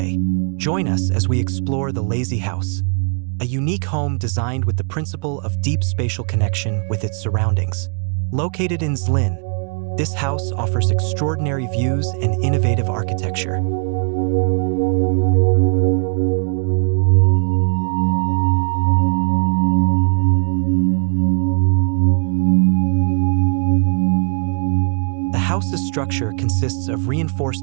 Join us as we explore the Lazy House, a unique home designed with the principle of deep spatial connection with its surroundings. Located in Zlín, this house offers extraordinary views and innovative architecture. The house's structure consists of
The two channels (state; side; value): quieter; left; 39.9 dB